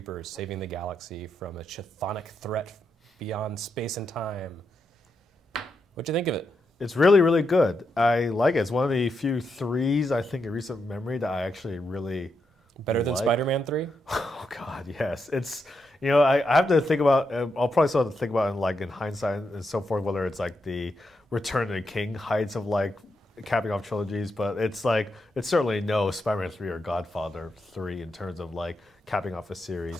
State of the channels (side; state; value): both; normal; correlation 0.83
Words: saving the galaxy from a chthonic threat beyond space and time. What'd you think of it? It's really, really good. I like it. It's one of the few threes, I think, in recent memory that I actually really Better than like. Spider-Man 3? Oh, God, yes. It's, I have to think about, I'll probably still have to think about in hindsight and so forth, whether it's like the Return of the King heights of capping off trilogies, but it's certainly no Spider-Man 3 or Godfather 3 in terms of capping off a